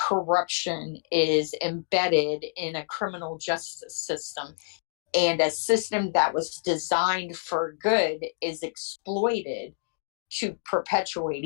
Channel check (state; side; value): silent; right; digital silence